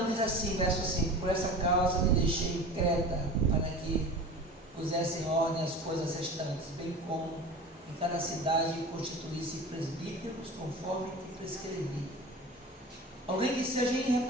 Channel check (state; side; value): normal; both; correlation 0.35